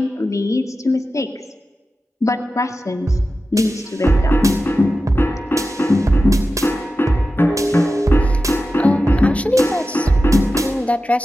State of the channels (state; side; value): normal; both; correlation 0.93